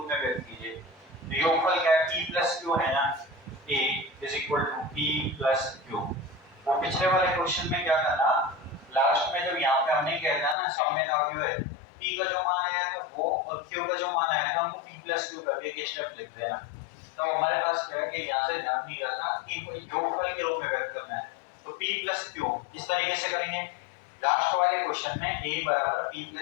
में व्यक्त कीजिए। तो योगफल क्या है p प्लस q है ना, a is equal to p plus q। वो पिछले वाले क्वेश्चन में क्या करना लास्ट में जब यहाँ पे हमने कहना ना सममित अवयव है, p का जो मान आया था वो और q का जो मान आया था हमको p प्लस q करके एक स्टेप लिख देना। तो हमारे पास क्या है कि यहाँ से ध्यान नहीं रहा था कि कोई योगफल के रूप में व्यक्त करना है, तो p प्लस q इस तरीके से करेंगे। लास्ट वाले क्वेश्चन में a बराबर p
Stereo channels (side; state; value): right; drops out; at 10.6 s